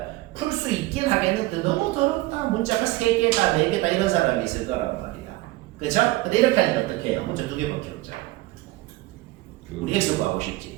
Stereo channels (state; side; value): quieter; left; 19.2 dB